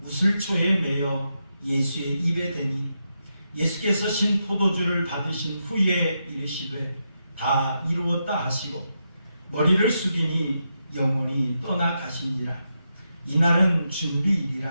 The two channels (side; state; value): both; inverted; correlation -0.85